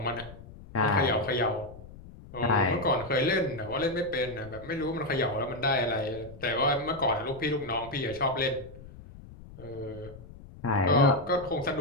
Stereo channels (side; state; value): left; noise; rumble, 17 dB below the sound